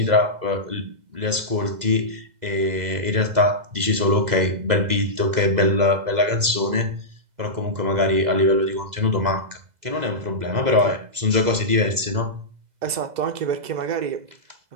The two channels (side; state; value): left; late; 2.0 ms